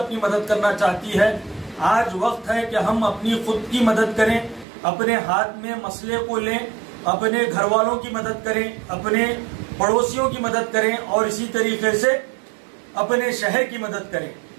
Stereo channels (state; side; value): drops out; left; at 4.7 s